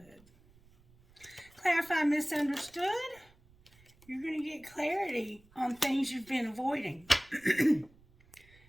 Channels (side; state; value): right; noise; rumble, 28 dB below the sound